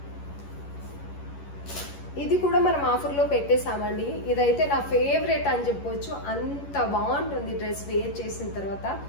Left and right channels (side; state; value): right; late; 11 ms